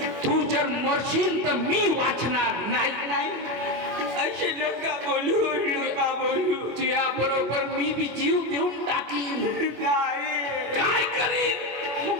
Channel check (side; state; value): left; late; 25 ms